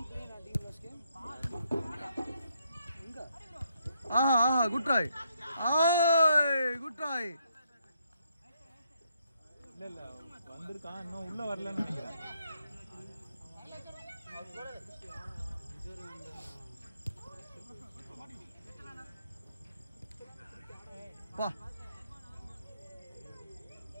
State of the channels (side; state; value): both; inverted; correlation -0.75